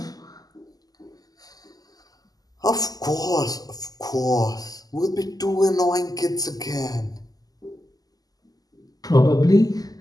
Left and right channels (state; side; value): late; right; 0.18 ms